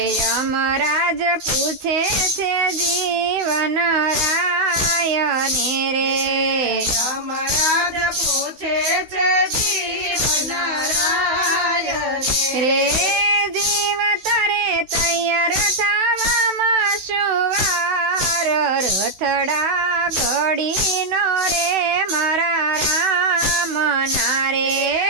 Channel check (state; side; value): late; left; 16 ms